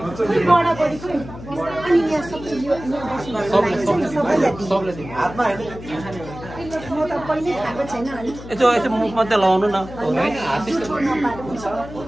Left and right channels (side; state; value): left; noise; hum, 14 dB below the sound